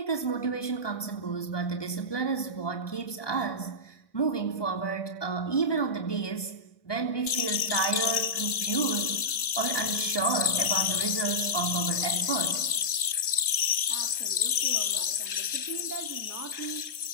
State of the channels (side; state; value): right; late; 1.6 ms